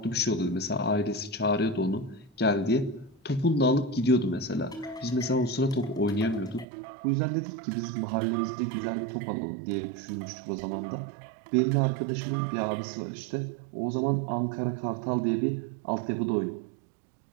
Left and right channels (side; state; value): left; drops out; at 6.7 s